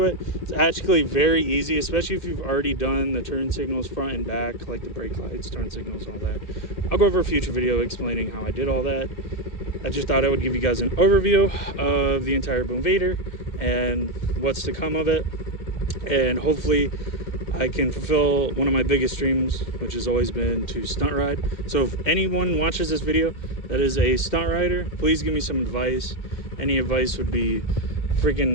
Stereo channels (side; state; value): right; late; 2.1 ms